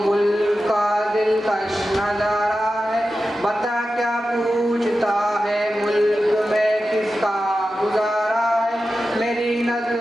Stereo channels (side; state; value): both; normal; correlation 0.92